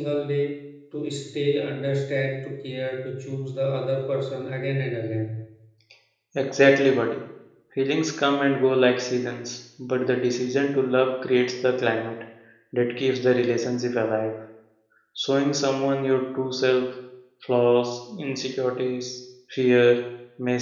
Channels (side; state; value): both; identical; correlation 1.00